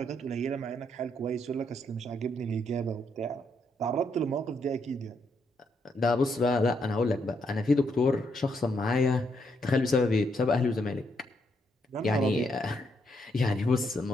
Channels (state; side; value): normal; both; correlation 0.76